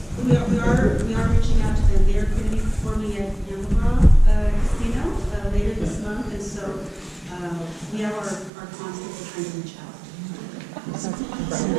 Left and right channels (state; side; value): drops out; left; at 8.5 s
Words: We are reaching out to them. They are going to be performing at Yamaba Casino later this month, and so we have our constable trying to reach out.